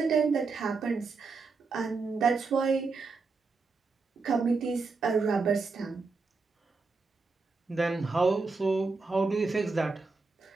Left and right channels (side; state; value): left; quieter; 4.2 dB